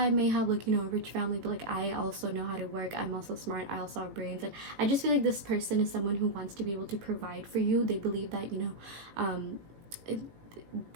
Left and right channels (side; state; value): left; late; 18 ms